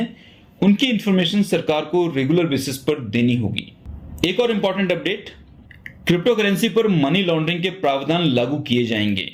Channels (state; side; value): identical; both; correlation 1.00